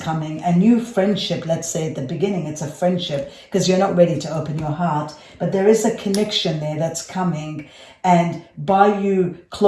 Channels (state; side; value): identical; both; correlation 1.00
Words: a new friendship. Let's say at the beginning, it's a friendship because you're not ready to open your heart. But there is a connection there that's coming. And by you